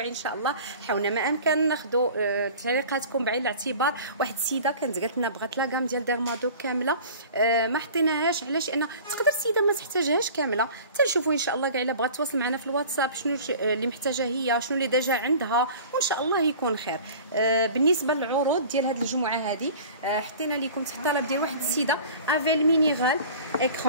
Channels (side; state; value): both; inverted; correlation -0.42